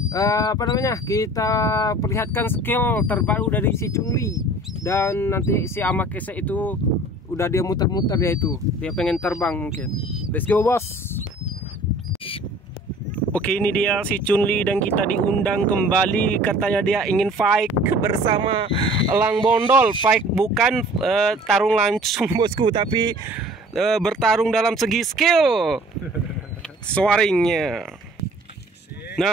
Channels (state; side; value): normal; both; correlation 0.49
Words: kita perlihatkan skill terbaru dari si Chunli. Dan nanti si Amakese itu udah dia muter-muter, dia pengen terbang mungkin. Let's go bos. Oke, ini dia si Chunli dan kita diundang kembali. Katanya dia ingin fight bersama elang bondol. Fight bukan tarung langsung bosku, tapi bertarung dalam segi skill swaringnya.